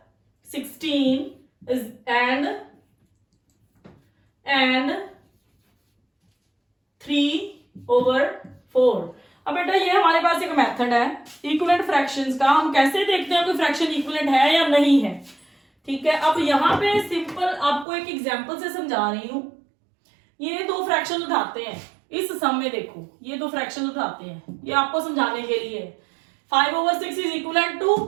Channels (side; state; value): left; drops out; at 17.9 s